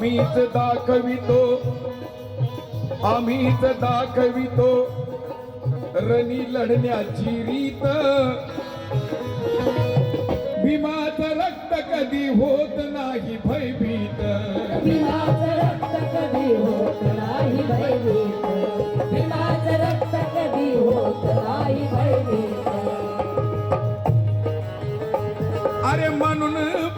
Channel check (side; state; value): both; identical; correlation 1.00